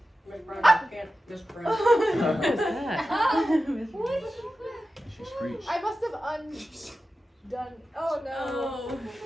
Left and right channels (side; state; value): both; normal; correlation 0.93